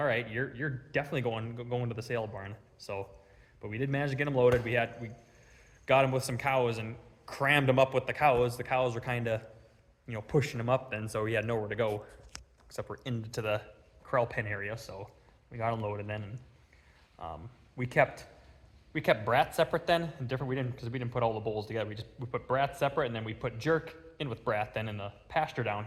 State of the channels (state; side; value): identical; both; correlation 1.00